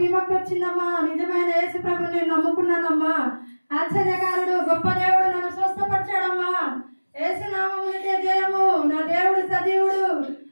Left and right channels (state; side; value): inverted; both; correlation -1.00